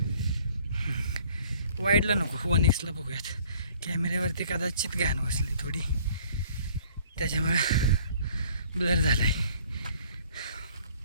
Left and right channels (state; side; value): inverted; both; correlation -0.56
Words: वाईडला नको, 1x बघूयात. कॅमेऱ्यावरती कदाचित घाण बसली थोडी, त्याच्यामुळं ब्लर झाला आहे.